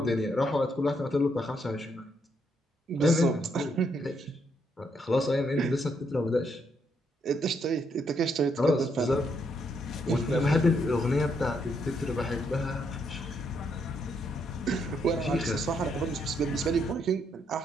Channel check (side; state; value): both; normal; correlation 0.75